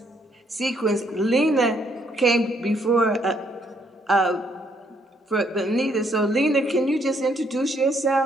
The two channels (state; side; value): normal; both; correlation 0.70